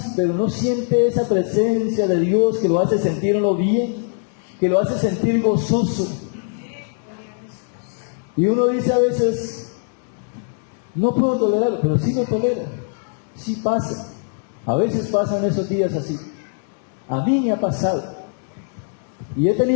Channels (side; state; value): right; silent; 61 dB below the other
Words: pero no siente esa presencia de Dios que lo hace sentirlo bien, que lo hace sentir gozoso. Y uno dice a veces, no puedo tolerarlo, pero sí lo tolera, sí pasa. A veces pasan esos días así. A mí me ha pasado. Y he